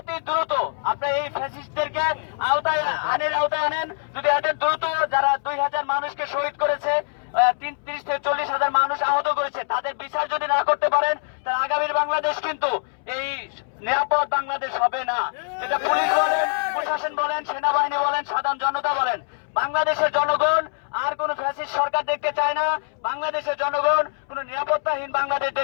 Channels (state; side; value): silent; right; 63 dB below the other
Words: দ্রুত আপনারা এই ফ্যাসিস্টদেরকে আওতায় আনেন। যদি এদের দ্রুত যারা 2000 মানুষকে শহীদ করেছে, 30 থেকে 40,000 মানুষ আহত করেছে, তাদের বিচার যদি না করতে পারেন তাহলে আগামীর বাংলাদেশ কিন্তু এই নিরাপদ বাংলাদেশ হবে না। এটা পুলিশ বলেন, প্রশাসন বলেন, সেনাবাহিনী বলেন, সাধারণ জনতা বলেন, বাংলাদেশের জনগণ আর কোন ফ্যাসিস্ট সরকার দেখতে চায় না। বাংলাদেশের জনগণ কোন নিরাপত্তাহীন বাংলাদেশ